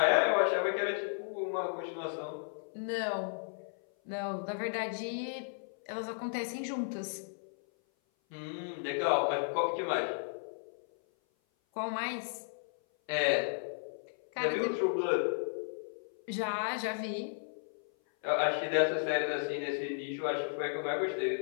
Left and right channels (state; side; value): silent; right; 55 dB below the other